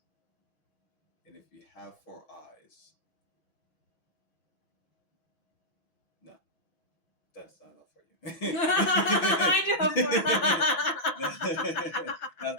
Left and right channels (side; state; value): right; late; 5.9 ms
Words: and if you have four eyes, no, that's not enough for you. I do That's